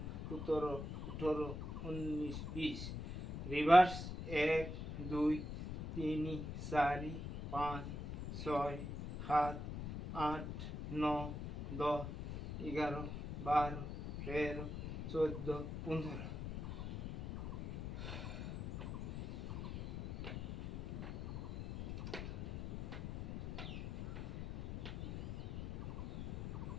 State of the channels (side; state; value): left; noise; rumble, 7 dB below the sound